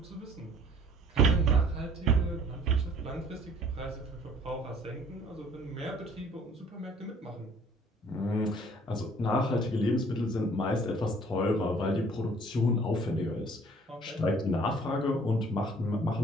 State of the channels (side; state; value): both; normal; correlation 0.55